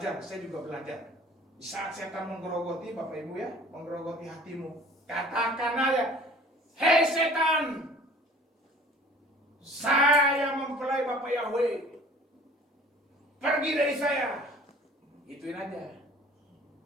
saya juga belajar. Di saat setan menggerogoti, Bapak Ibu ya, menggerogoti hatimu, katakan aja, hei setan, saya mempelai Bapak Yahweh, pergi dari saya. Ituin aja.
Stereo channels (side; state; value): both; normal; correlation 0.48